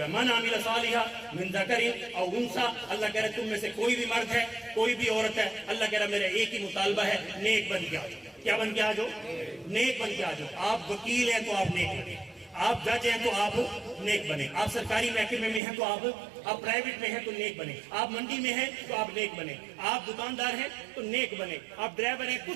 ہے من عمل صالحا من ذکر او انثی. اللہ کہہ رہا ہے تم میں سے کوئی بھی مرد ہے کوئی بھی عورت ہے, اللہ کہہ رہا ہے میرا ایک ہی مطالبہ ہے نیک بن کے آ جاؤ. کیا بن کے آ جاؤ؟ نیک بن کے آ جاؤ. آپ وکیل ہیں تو آپ نیک بنے, آپ جج ہیں تو آپ نیک بنے, آپ سرکاری محکمے میں ہیں تو آپ پرائیویٹ میں ہیں تو نیک بنے, آپ منڈی میں ہیں تو آپ نیک بنے, آپ دکاندار ہیں تو نیک بنے, آپ ڈرائیور ہیں,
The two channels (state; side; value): drops out; left; at 15.6 s